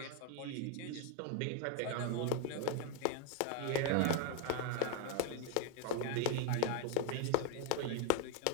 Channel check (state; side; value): different; both; correlation 0.01